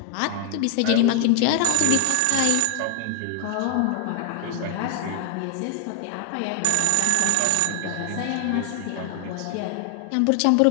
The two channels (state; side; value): different; both; correlation 0.00